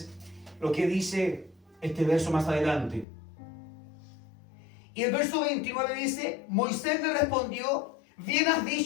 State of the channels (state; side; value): drops out; right; at 3.1 s